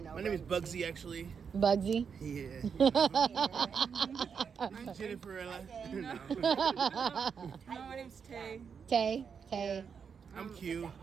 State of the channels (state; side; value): quieter; left; 6.5 dB